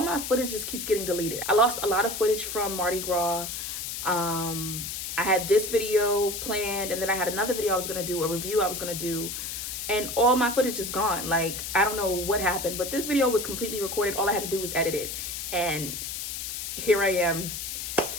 footage just keeps getting deleted. I lost a lot of footage from Mardi Gras. I had this video planned, and then I had another video I was gonna do, a review I was gonna do, and all my footage is gone. Like, I don't know what happened, but this video was completely recorded. All I had to do was edit it. And here I am,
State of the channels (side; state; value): left; noise; hiss, 5 dB below the sound